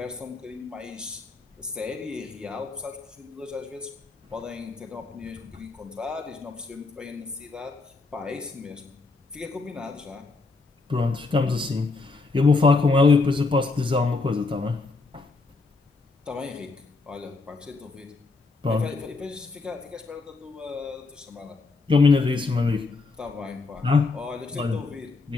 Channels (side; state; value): right; quieter; 3.8 dB